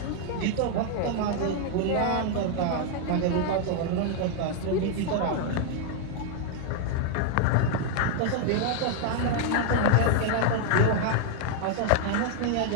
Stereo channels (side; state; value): both; different; correlation 0.00